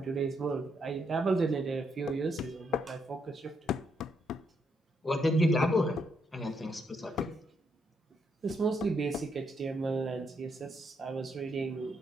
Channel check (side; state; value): both; normal; correlation 0.76